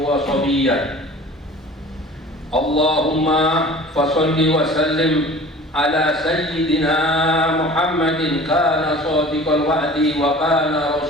wa sabiyyan. Allahumma fasalli wa sallim ala sayyidina Muhammadin kana sadiqal wa'di wa kana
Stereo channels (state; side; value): normal; both; correlation 0.43